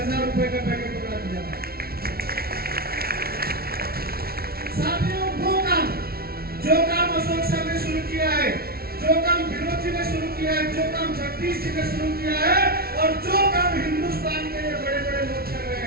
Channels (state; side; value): late; left; 0.44 ms